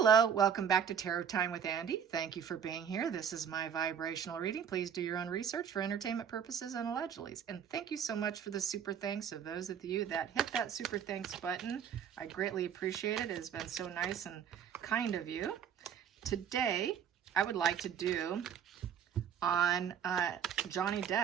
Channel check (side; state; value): left; quieter; 8.1 dB